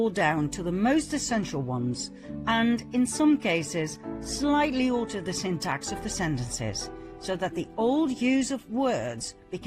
down to the most essential ones, and in some cases, slightly altered the syntax of the sentences, so that the old use of words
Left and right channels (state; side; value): identical; both; correlation 1.00